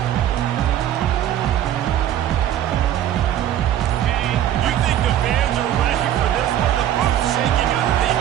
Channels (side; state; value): left; quieter; 11.4 dB